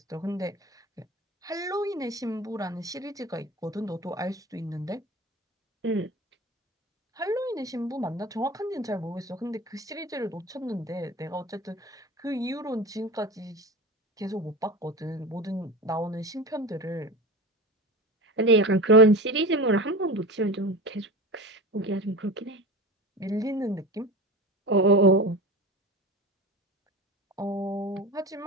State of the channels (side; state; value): both; normal; correlation 0.31